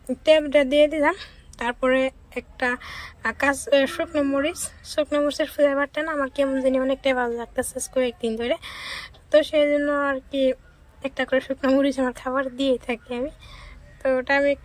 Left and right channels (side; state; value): both; identical; correlation 1.00